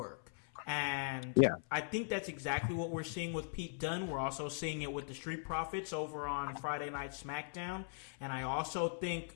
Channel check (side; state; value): right; silent; 51 dB below the other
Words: And I think that's exactly what we're seeing with Pete Dunne. We're also seeing it with the Street Profits over on Friday Night SmackDown. And I also